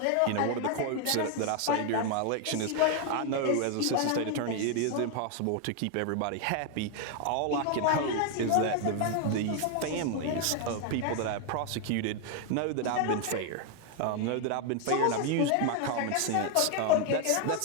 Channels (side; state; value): both; different; correlation 0.00